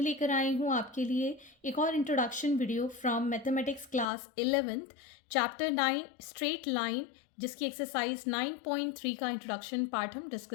लेकर आई हूँ आपके लिए एक और introduction video from mathematics class 11th chapter 9 straight line, जिसकी एक्सरसाइज 9.3 का इंट्रोडक्शन पार्ट हम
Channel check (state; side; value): drops out; right; at 4.0 s